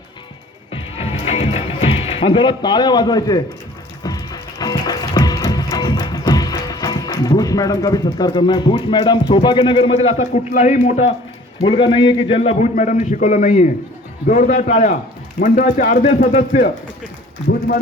आणि जरा टाळ्या वाजवायचे. भूष मैडम का भी सत्कार करना है. भूष मैडम, सौभाग्यनगर मधील असा कुठलाही मोठा मुलगा नाहीये की ज्यांना भूष मॅडमने शिकवलं नाहीये. जोरदार टाळ्या. मंडळाचे अर्धे सदस्य भूष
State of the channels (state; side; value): normal; both; correlation 0.50